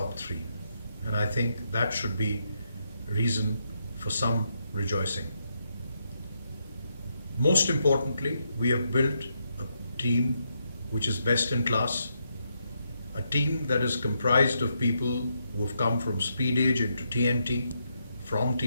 3. And I think that should be reason for some rejoicing. Most importantly, we have built a team which is best in class, a team that is comprised of people who have come from Speed Age into TNT, from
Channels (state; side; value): inverted; both; correlation -0.80